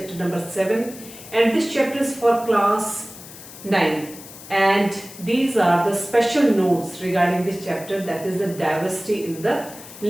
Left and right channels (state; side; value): noise; left; hiss, 16 dB below the sound